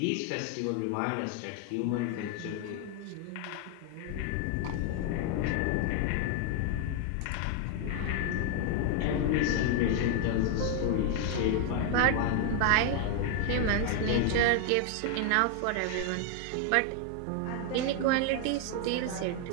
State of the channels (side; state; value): both; different; correlation 0.00